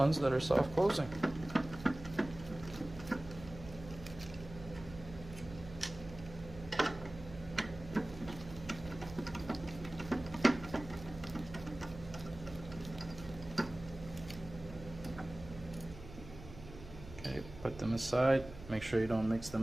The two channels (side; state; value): right; noise; hum, 14 dB below the sound